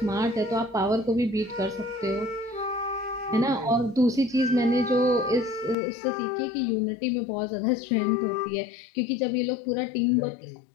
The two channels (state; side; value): drops out; right; at 5.8 s